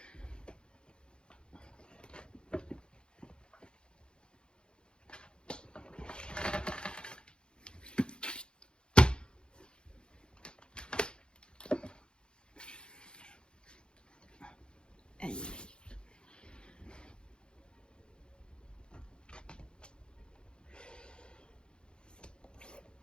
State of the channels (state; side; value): late; right; 0.052 ms